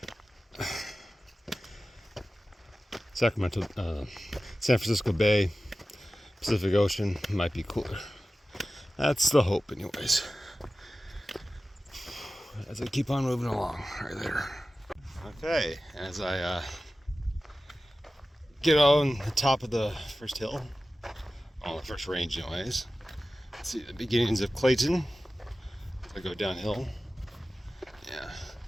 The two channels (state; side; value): normal; both; correlation 0.95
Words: San Francisco Bay, Pacific Ocean, might be cooler. That's the hope, anyways. As I keep on moving along, right there. Okay, as I get on the top of the first hill, on the first range, anyways. See the beginnings of Clayton. I go downhill. Yeah.